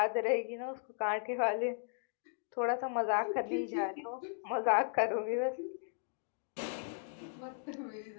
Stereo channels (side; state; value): right; silent; digital silence